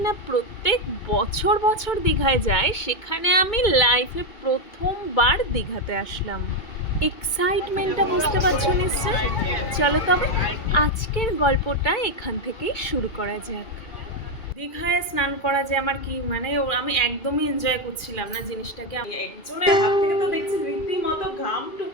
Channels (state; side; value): late; right; 2.3 ms